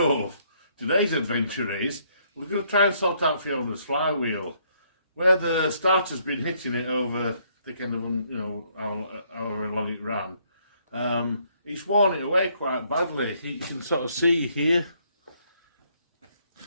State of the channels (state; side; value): inverted; both; correlation -0.69